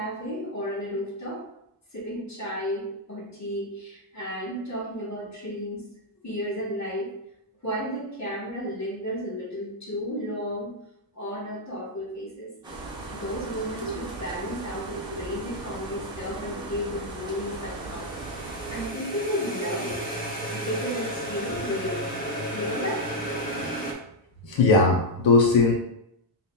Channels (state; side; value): normal; both; correlation -0.03